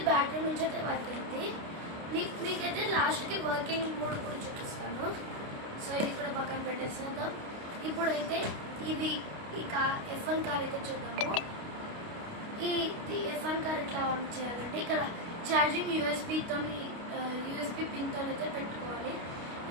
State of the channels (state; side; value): late; left; 29 ms